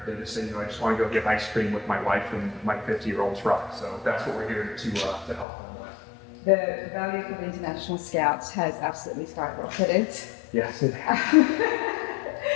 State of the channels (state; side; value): drops out; right; at 5.5 s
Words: just say, you know, I just want to go get ice cream with my wife and my 50-year-old truck. So that's what we're here to help them with. The value for the International Scouts has absolutely skyrocketed. Yes, it has.